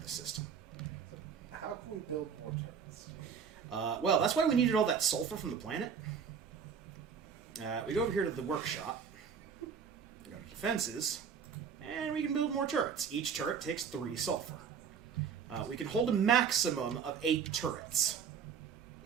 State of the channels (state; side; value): quieter; left; 6.9 dB